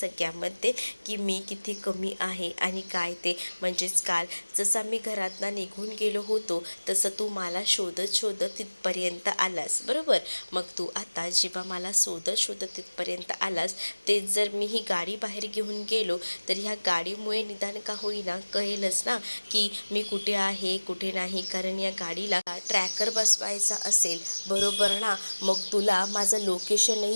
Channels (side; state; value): both; inverted; correlation -1.00